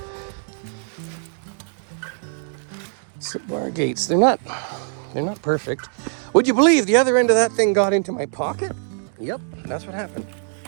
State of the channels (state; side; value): silent; left; digital silence